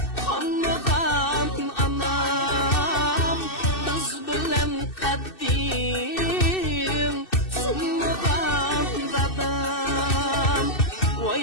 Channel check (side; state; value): right; late; 2.6 ms